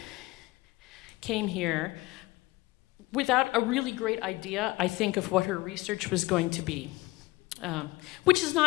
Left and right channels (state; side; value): quieter; right; 20.5 dB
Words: came here without a really great idea, I think, of what her research was going to be, which is